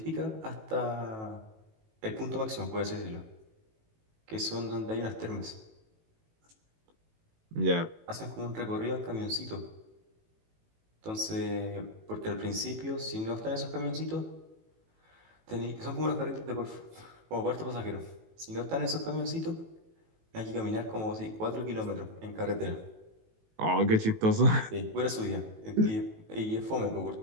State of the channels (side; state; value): left; late; 18 ms